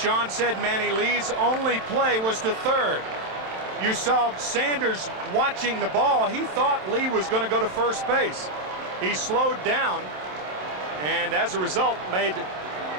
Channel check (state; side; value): late; left; 27 ms